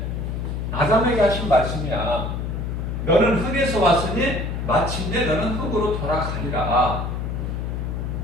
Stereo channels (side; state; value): left; noise; hum, 3 dB below the sound